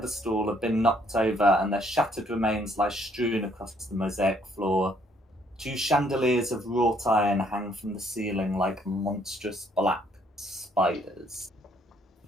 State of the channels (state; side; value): normal; both; correlation 0.66